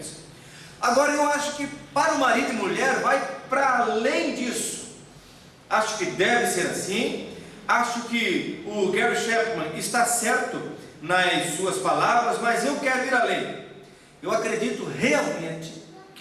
Agora, eu acho que para o marido e mulher vai para além disso. Acho que deve ser assim. Acho que o Gary Chapman está certo nas suas palavras, mas eu quero ir além. Eu acredito realmente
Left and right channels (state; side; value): identical; both; correlation 1.00